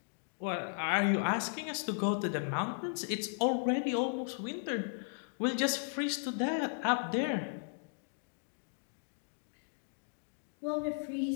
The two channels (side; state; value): right; silent; digital silence